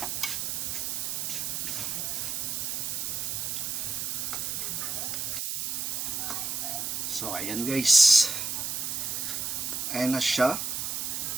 So ayan guys. Ayan na siya.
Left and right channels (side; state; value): right; noise; hiss, 1 dB below the sound